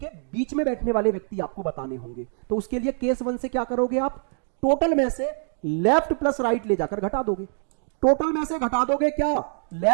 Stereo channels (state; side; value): silent; left; 57 dB below the other